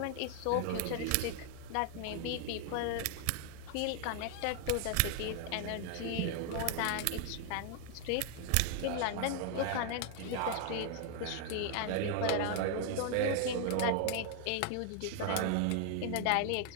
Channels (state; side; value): different; both; correlation 0.00